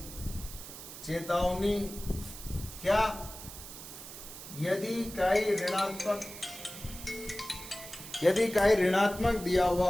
चेतावनी क्या? यदि काई ऋणात्मक दिया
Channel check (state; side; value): noise; right; hiss, 13 dB below the sound